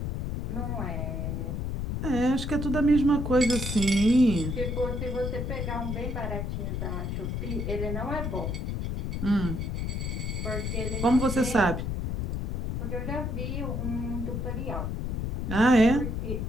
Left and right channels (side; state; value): left; noise; rumble, 2 dB below the sound